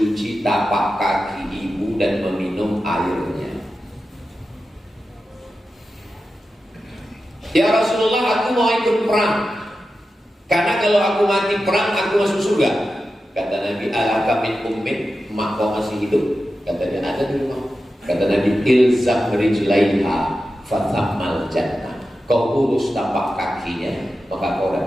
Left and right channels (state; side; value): normal; both; correlation 0.92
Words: tapak kaki ibu dan meminum airnya? Ya Rasulullah, aku mau ikut perang. Karena kalau aku mati perang, aku masuk surga. Kata Nabi, alaka min ummin, emak kau masih hidup? Kata dia, ada di rumah. Kata Nabi, ilzam rijlaiha fathammal jannah. Kau urus tapak kakinya, maka kau